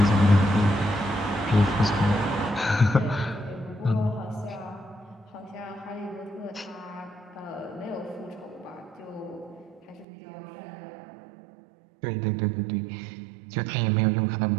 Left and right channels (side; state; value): left; drops out; at 10.1 s